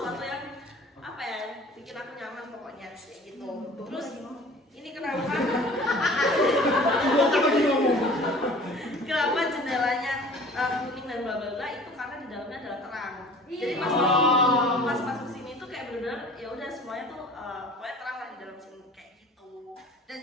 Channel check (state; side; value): normal; both; correlation 0.46